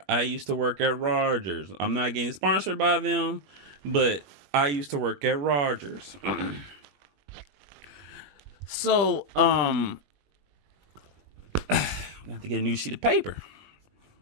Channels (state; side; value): late; left; 21 ms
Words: I used to work at Rogers. I'm not getting sponsored by them, but I used to work at Rogers. So, I have to get a new sheet of paper.